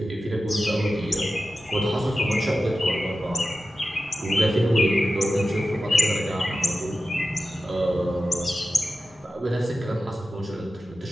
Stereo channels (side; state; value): both; normal; correlation 0.93